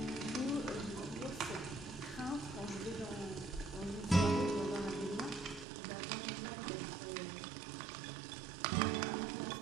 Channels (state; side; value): drops out; left; at 5.7 s